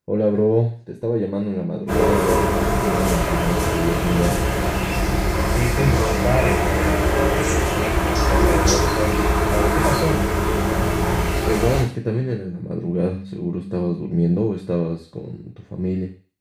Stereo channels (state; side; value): identical; both; correlation 1.00